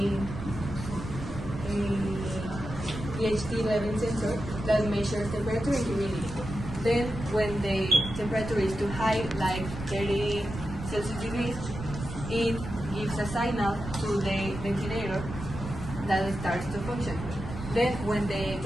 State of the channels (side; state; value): right; noise; rumble, 9 dB below the sound